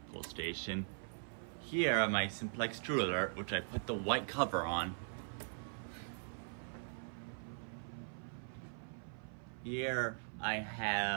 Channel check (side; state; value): left; silent; 51 dB below the other